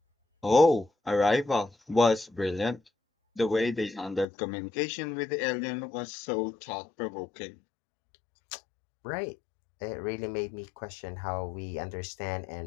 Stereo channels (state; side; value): drops out; right; at 4.2 s